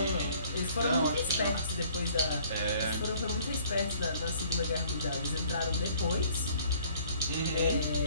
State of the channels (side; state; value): both; inverted; correlation -0.57